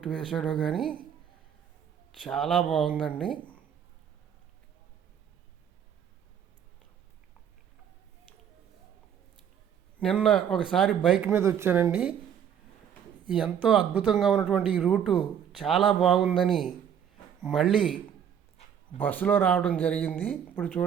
వేసాడో కానీ చాలా బాగుందండి. నిన్న ఒకసారి బైక్ మీద వచ్చానండి. ఎంతో అద్భుతంగా ఉన్నటువంటి ఈ రూటు చాలా బాగుందని మళ్ళీ బస్సులో రావడం జరిగింది. ఇప్పుడు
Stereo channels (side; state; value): left; quieter; 8.6 dB